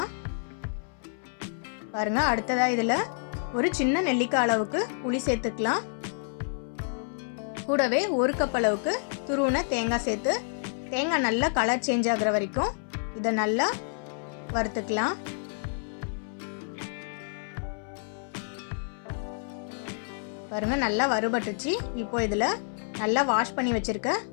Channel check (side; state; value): right; silent; 59 dB below the other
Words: பாருங்கள், அடுத்ததாக இதில் ஒரு சின்ன நெல்லிக்காய் அளவுக்கு புளி சேர்த்துக்கலாம். கூடவே 1 கப் அளவுக்கு துருவின தேங்காய் சேர்த்து தேங்காய் நல்லா கலர் சேஞ்ச் ஆகிற வரைக்கும் இதை நல்லா வறுத்துக்கலாம். பாருங்கள், நல்லா வறுபட்டுச்சு. இப்போ இதில் நல்லா வாஷ் பண்ணி வச்சுருக்க